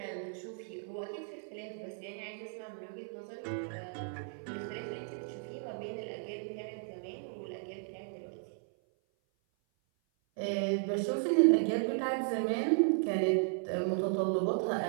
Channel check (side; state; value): left; silent; 54 dB below the other